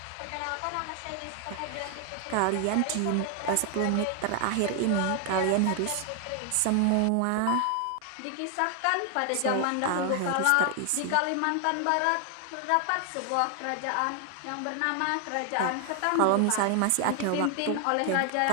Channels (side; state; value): both; different; correlation 0.00